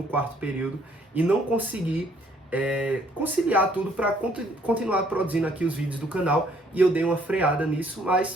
quarto período e não consegui conciliar tudo para continuar produzindo aqui os vídeos do canal, e eu dei uma freada nisso,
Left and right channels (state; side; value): normal; both; correlation 0.64